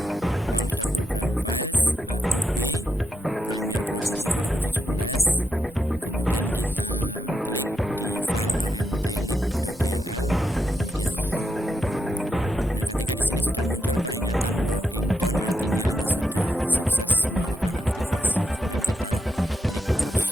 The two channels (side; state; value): both; normal; correlation 0.84